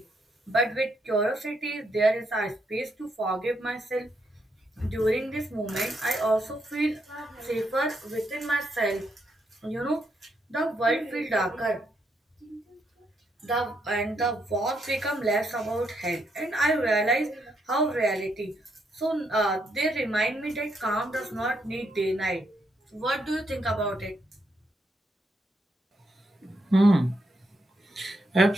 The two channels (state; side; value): normal; both; correlation 0.77